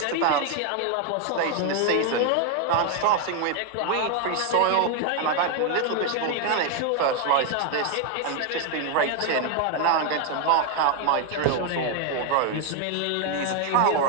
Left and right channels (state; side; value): different; both; correlation 0.01